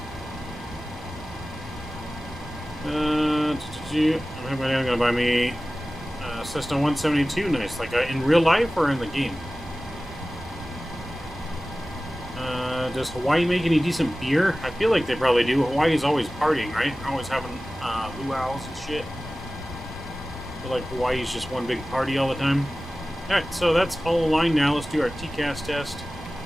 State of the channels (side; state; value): both; normal; correlation 0.97